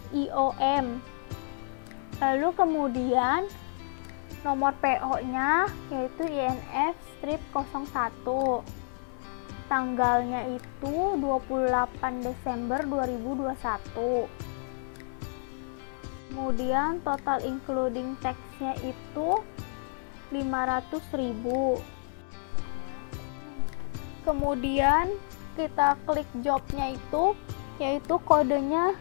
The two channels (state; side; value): silent; right; 58 dB below the other